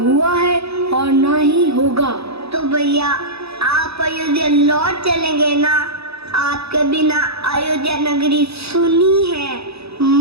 हुआ है और न ही होगा। तो भैया आप अयोध्या लौट चलेंगे ना? आपके बिना अयोध्या नगरी सुनी है,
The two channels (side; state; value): left; late; 0.78 ms